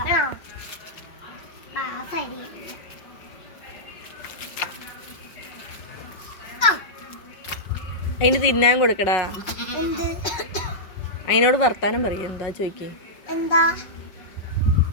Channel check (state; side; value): late; right; 5.4 ms